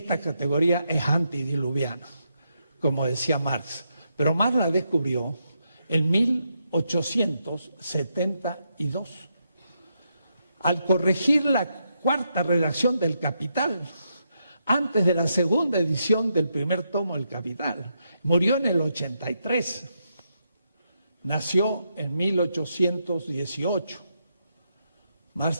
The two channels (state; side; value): inverted; both; correlation -0.81